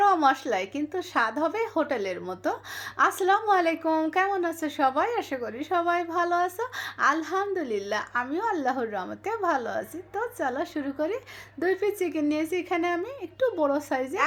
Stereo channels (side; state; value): both; identical; correlation 1.00